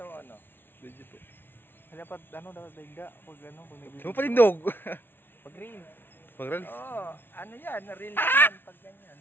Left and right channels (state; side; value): late; right; 0.10 ms